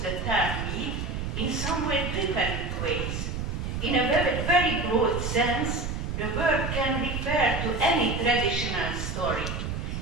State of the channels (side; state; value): right; noise; rumble, 3 dB below the sound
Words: the term myth in somewhat different ways. In a very broad sense, the word can refer to any traditional story.